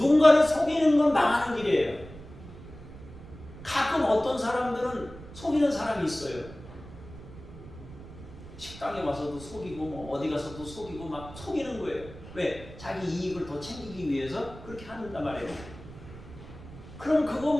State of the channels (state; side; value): noise; right; rumble, 16 dB below the sound